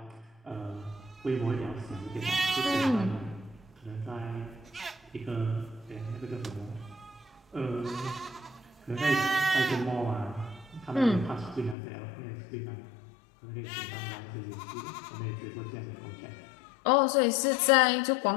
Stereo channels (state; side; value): drops out; right; at 11.8 s